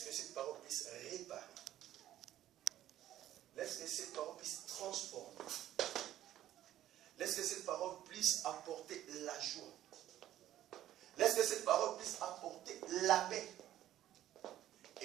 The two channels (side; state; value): left; quieter; 12.9 dB